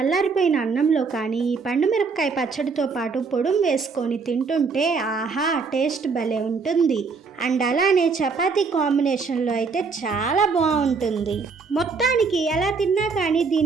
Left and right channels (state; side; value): quieter; left; 4.8 dB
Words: అన్నంలో కానీ ఈ పండు మిరపకాయ పచ్చడితో పాటు పొడుం వేసుకొని తింటుంటే ఆహా టేస్ట్ భలే ఉంటుంది. అండ్ అలానే చపాతీ కాంబినేషన్లో అయితే చాలా బాగుంటుంది. మొత్తానికి ఎలా తిన్నా కానీ